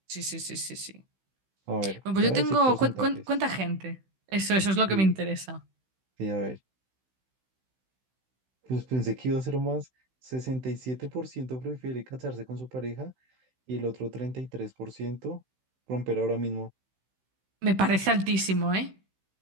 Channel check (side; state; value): left; late; 16 ms